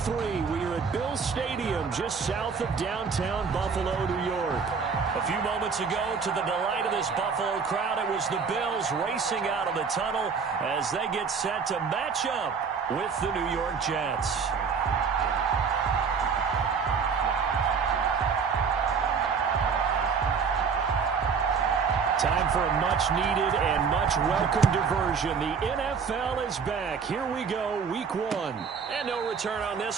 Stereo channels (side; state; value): left; quieter; 5.8 dB